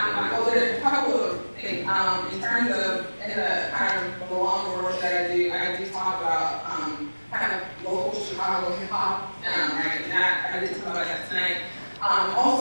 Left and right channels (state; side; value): inverted; both; correlation -1.00